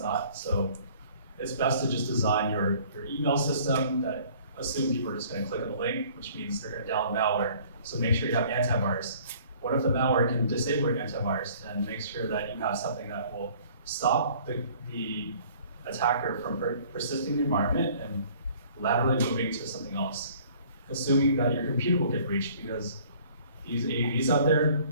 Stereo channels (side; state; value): both; inverted; correlation -0.54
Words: not. So it's best to just design your email system that assume people are just going to click on the link, which means they're going to download malware. So make sure you have antivirus. What if the malware can disable your antivirus? And make sure that you have something that will stop the attacker from persisting in the environment and laterally moving to something else. Assuming that your computer will get breached, because these AVs out there,